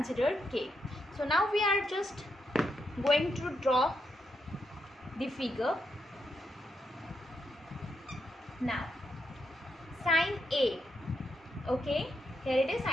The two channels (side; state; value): both; normal; correlation 0.82